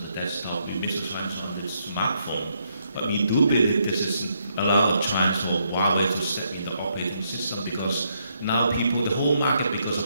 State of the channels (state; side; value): inverted; both; correlation -0.76